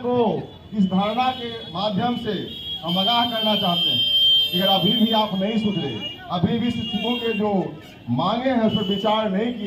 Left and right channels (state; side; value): identical; both; correlation 1.00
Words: इस धारणा के माध्यम से हम आगाह करना चाहते हैं कि अगर अभी भी आप नहीं सुधरे, अभी भी शिक्षकों के जो मांगे हैं उस पर विचार नहीं